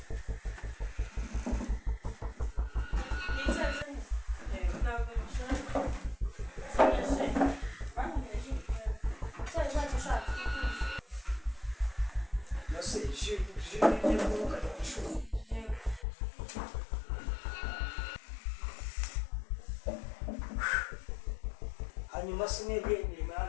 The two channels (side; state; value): right; drops out; at 16.1 s